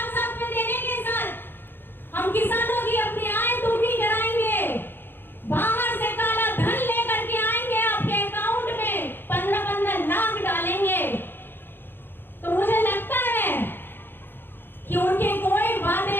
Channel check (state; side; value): late; right; 0.10 ms